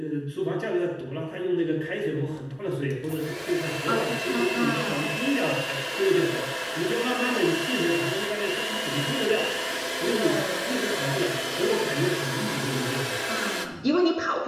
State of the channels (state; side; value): identical; both; correlation 1.00